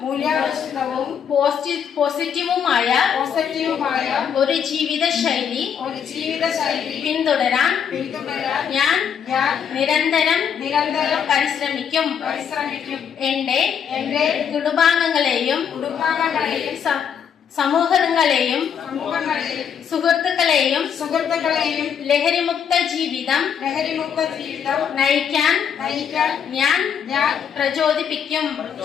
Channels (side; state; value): right; quieter; 7.8 dB